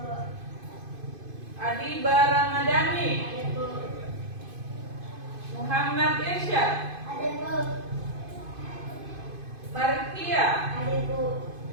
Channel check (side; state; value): left; late; 2.5 ms